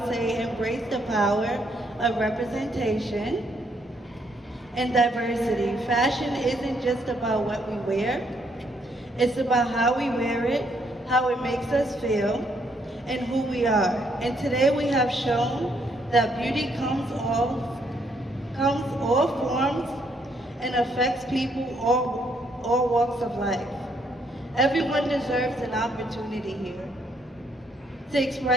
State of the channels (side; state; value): both; normal; correlation 0.71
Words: say embrace the power of representation and diversity. Fashion isn't just about what we wear, it's about how we wear it, how it makes us feel, and who we are. And today we have shown that beauty comes all forms and affects people all walks of life. Everyone deserves an opportunity here to